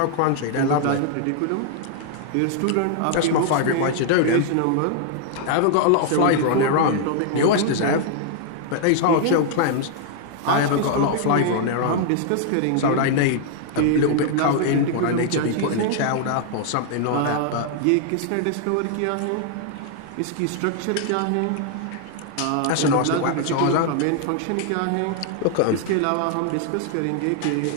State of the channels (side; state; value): both; different; correlation 0.00